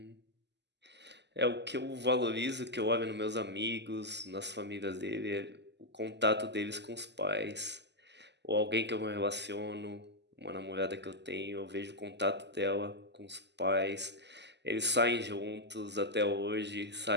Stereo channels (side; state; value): left; late; 0.50 ms